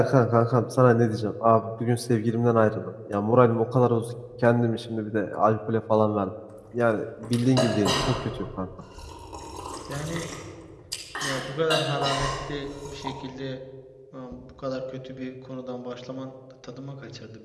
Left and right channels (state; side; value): identical; both; correlation 1.00